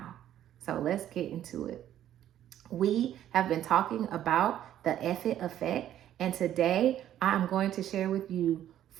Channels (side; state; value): left; quieter; 11.5 dB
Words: So let's get into it. We have been talking about the Eff-it effect, and today I'm going to share with you